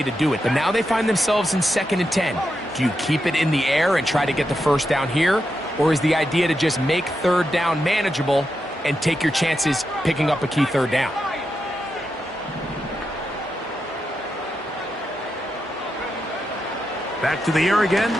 to do it. But now they find themselves in 2nd and 10. Do you keep it in the air and try to get the first down here? Or is the idea to just make 3rd down manageable and take your chances picking up a key 3rd down? Back to the air again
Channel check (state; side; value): normal; both; correlation 0.86